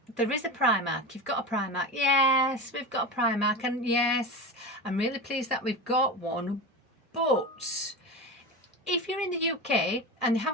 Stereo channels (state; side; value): normal; both; correlation 0.24